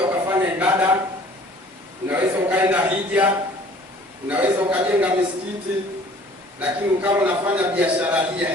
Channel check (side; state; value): both; normal; correlation 0.51